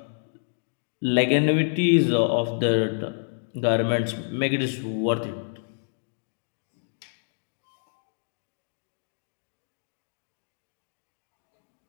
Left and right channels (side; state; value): right; silent; digital silence